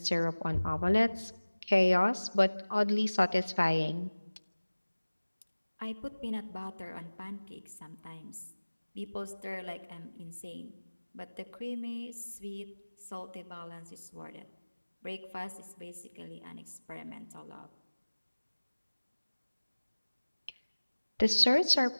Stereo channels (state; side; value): inverted; both; correlation -1.00